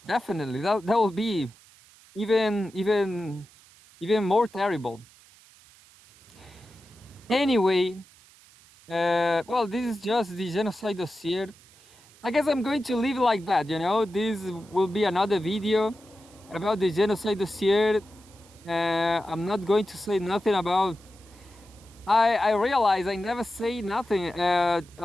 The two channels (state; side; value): noise; right; hiss, 26 dB below the sound